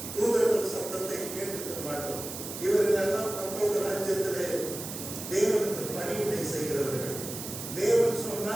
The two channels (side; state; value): right; noise; hiss, 8 dB below the sound